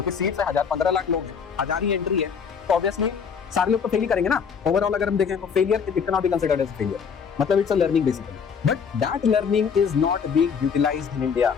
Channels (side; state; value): right; quieter; 6.5 dB